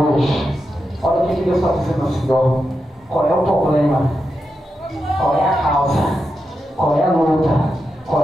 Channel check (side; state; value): both; normal; correlation 0.87